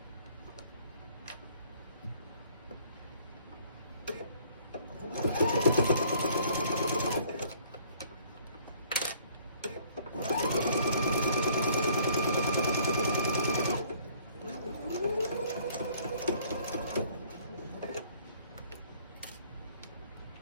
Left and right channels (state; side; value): inverted; both; correlation -0.59